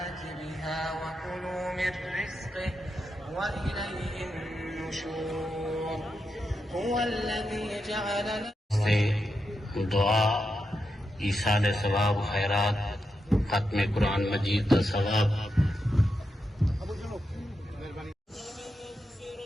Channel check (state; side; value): normal; both; correlation 0.86